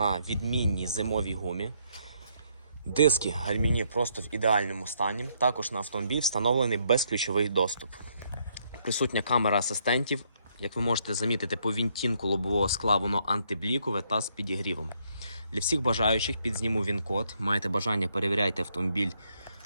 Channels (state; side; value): inverted; both; correlation -0.72